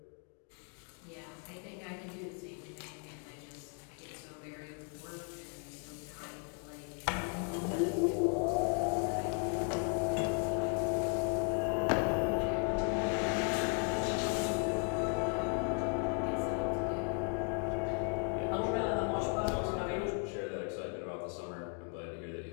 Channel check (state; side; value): quieter; right; 39.7 dB